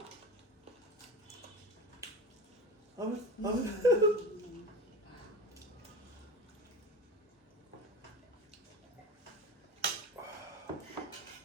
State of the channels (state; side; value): normal; both; correlation 0.30